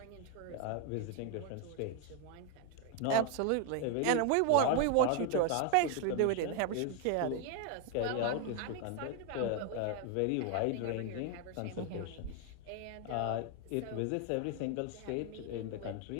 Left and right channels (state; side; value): different; both; correlation 0.01